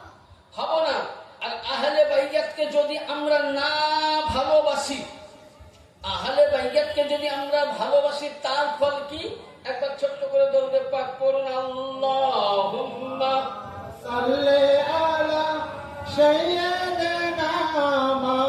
হব না। আর আহলে বাইতকে যদি আমরা না ভালোবাসি, আহলে বাইতকে যদি আমরা ভালোবাসি, তার ফল কি? একবার ছোট্ট করে দরুদ পাক পড়ুন, আল্লাহুম্মা সাল্লি আলা সাইয়্যিদিনা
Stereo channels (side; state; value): both; identical; correlation 1.00